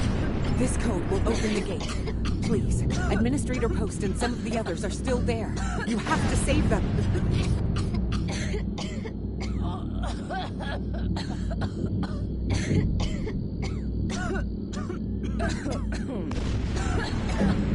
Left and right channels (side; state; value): both; identical; correlation 1.00